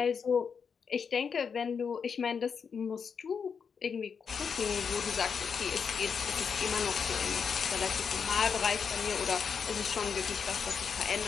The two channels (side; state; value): right; quieter; 6.3 dB